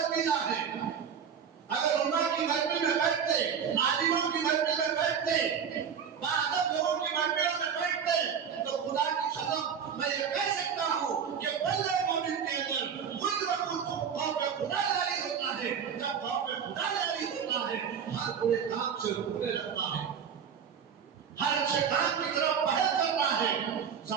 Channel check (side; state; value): left; quieter; 7.4 dB